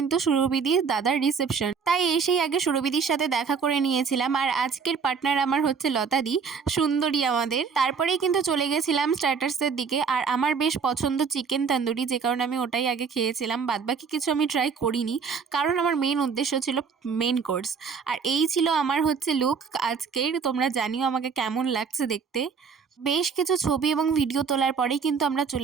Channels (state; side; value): quieter; left; 6.0 dB